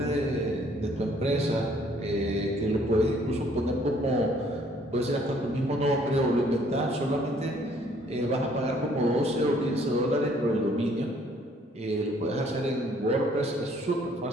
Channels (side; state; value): both; normal; correlation 0.62